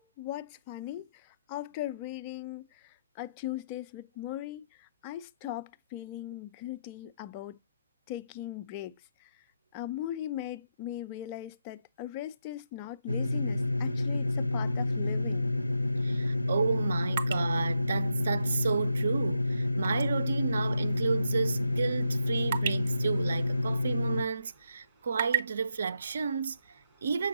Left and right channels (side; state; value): both; inverted; correlation -0.83